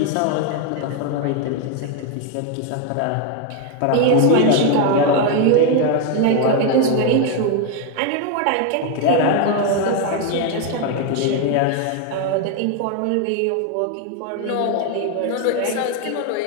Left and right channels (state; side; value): different; both; correlation 0.01